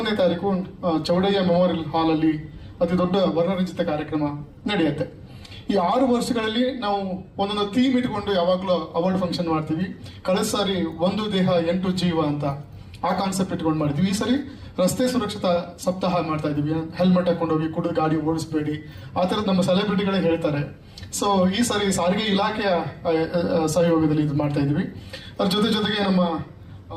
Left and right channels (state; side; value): identical; both; correlation 1.00